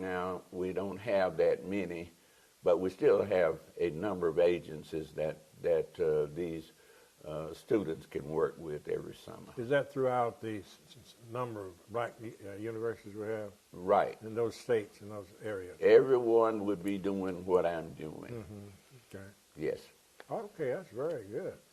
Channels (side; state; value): both; identical; correlation 1.00